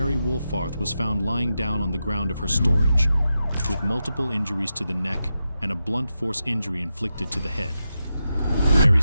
Woolfarth was found lying down on the ground of her storage, with multiple injuries to the neck and a blunt force injury inflicted to the head. Mary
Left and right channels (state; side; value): inverted; both; correlation -0.89